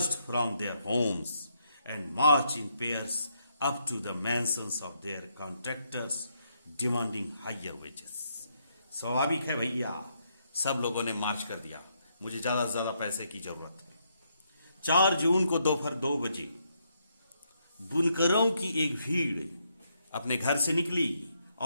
from their homes and marched in pairs up to the mansions of their contractors, demanding higher wages. स्वाभाविक है भैया, सब लोगों ने मार्च कर दिया, मुझे ज्यादा से ज्यादा पैसे की जरूरत है। 4 जून को दोपहर 2 बजे बुनकरों की एक भीड़ अपने घर से निकली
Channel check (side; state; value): both; inverted; correlation -0.76